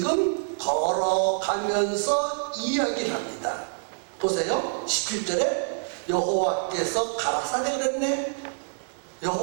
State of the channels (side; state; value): left; silent; digital silence